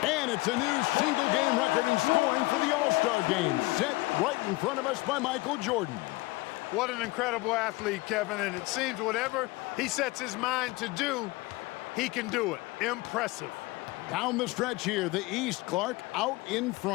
And it's a new single-game record in scoring for the All-Star Game. Set right in front of us by Michael Jordan. What an incredible athlete, Kevin. And it seems whatever he sets his mind to do, he can do it. Impressive. Down the stretch here, the East, Clark, out in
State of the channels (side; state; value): right; quieter; 21.9 dB